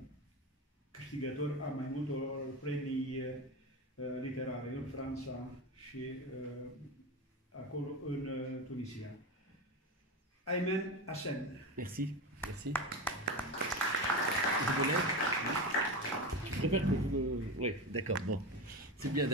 câștigător a mai multor premii literare în Franța și acolo în Tunisia. Aymen Hassen. Merci, merci. Vous voulez? Je préfère que vous me... Oui, d'accord, bon. C'est bien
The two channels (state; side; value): normal; both; correlation 0.20